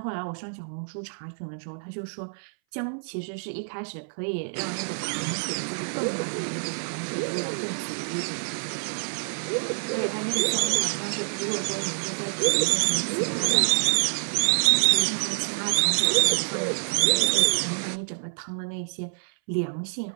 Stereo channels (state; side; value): silent; left; 60 dB below the other